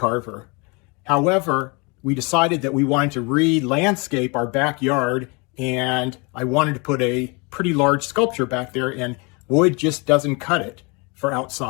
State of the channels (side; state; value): right; quieter; 30.0 dB